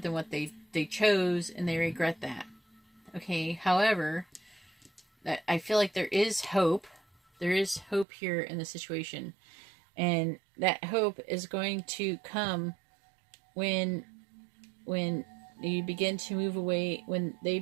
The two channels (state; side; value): drops out; left; at 8.1 s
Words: what they chose, and they regret that. Okay, however, I feel like there is hope. There is hope here in the situation. And that hope is going to come when you begin to move away, when they